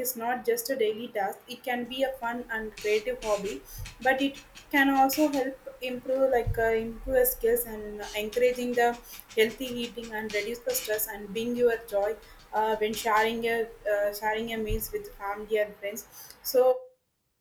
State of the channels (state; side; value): identical; both; correlation 1.00